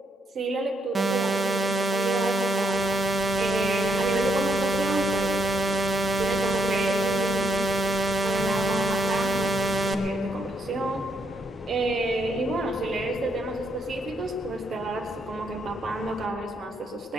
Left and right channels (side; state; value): both; normal; correlation 0.75